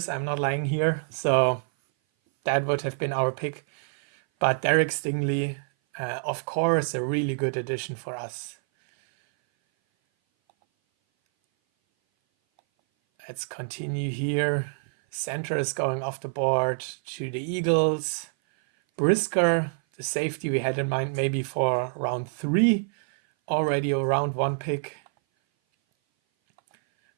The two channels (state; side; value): silent; left; 57 dB below the other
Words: I'm not lying here. So that would have been our pick. But Derek Stingley, of course, a really good addition for us. Let's continue here. Center is going off the board to the Eagles. Brisker, the safety we had in mind maybe for round 3. Already a round 1 pick.